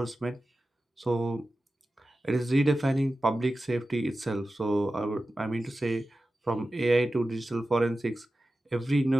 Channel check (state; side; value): normal; both; correlation 0.94